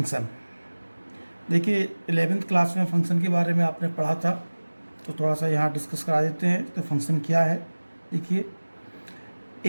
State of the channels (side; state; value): both; inverted; correlation -1.00